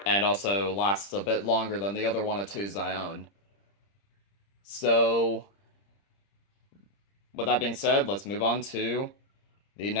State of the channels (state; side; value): late; right; 30 ms